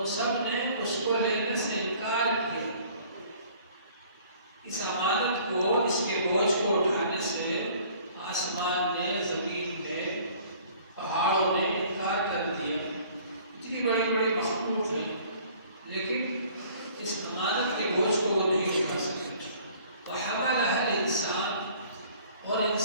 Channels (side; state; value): both; inverted; correlation -0.54